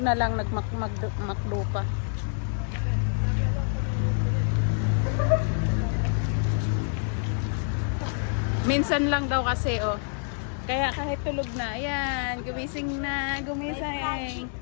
lang, nagmakdo pa. Minsan lang daw kasi, oh. Kaya kahit tulog na, ayan, gumising na, gumising.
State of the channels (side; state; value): right; silent; 60 dB below the other